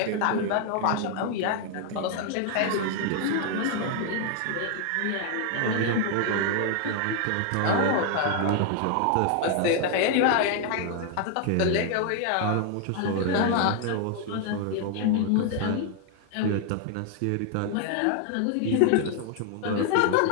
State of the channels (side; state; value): both; different; correlation 0.00